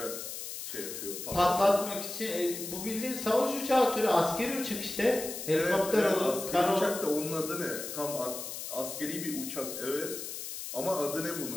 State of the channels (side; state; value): left; noise; hiss, 7 dB below the sound